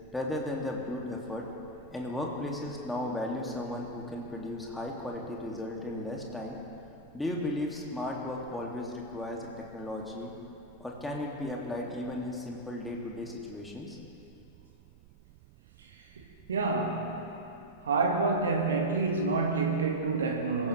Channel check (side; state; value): right; noise; rumble, 23 dB below the sound